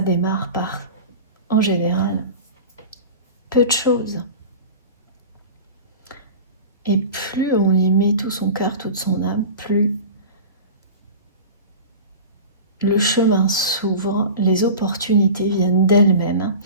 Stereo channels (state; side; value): inverted; both; correlation -0.34